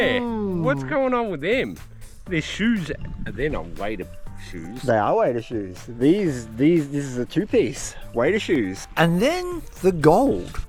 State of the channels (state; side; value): identical; both; correlation 1.00